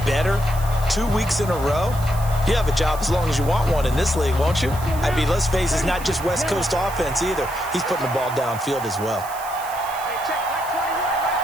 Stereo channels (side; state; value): right; noise; hiss, 15 dB below the sound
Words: better 2 weeks in a row, you have a job as long as you want one in this league, won't you? I mean, let's face it, it's not just West Coast offense either. He's putting the ball downfield as well.